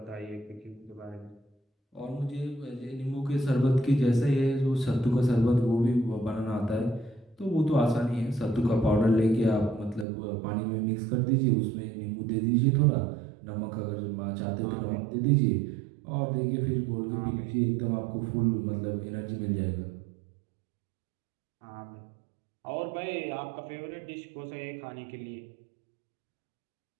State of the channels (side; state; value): left; drops out; at 10.1 s